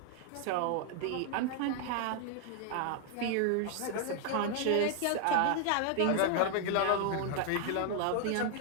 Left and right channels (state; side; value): different; both; correlation 0.00